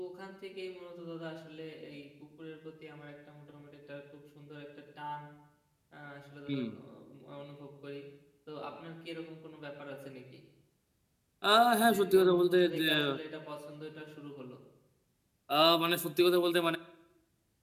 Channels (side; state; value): both; identical; correlation 1.00